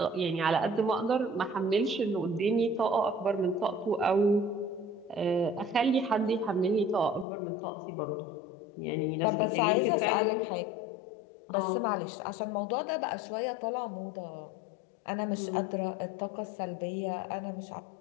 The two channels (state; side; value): drops out; right; at 7.2 s